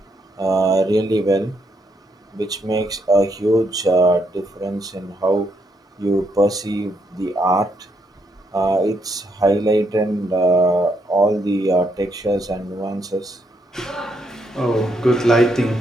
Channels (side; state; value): both; normal; correlation 0.76